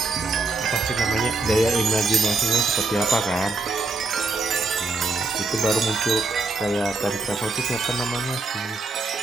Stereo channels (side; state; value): left; quieter; 3.4 dB